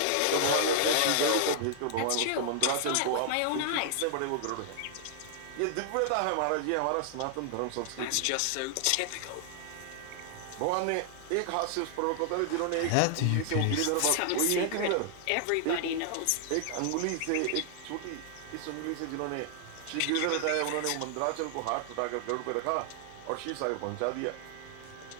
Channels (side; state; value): both; different; correlation 0.00